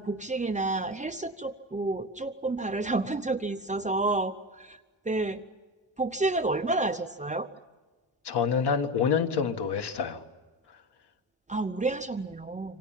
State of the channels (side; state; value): both; normal; correlation 0.24